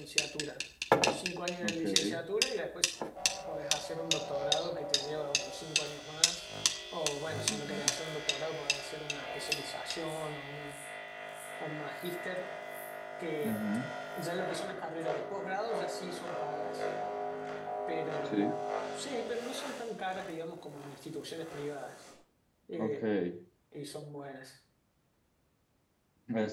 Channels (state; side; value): identical; both; correlation 1.00